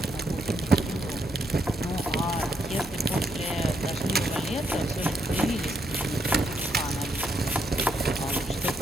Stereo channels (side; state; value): both; normal; correlation 0.76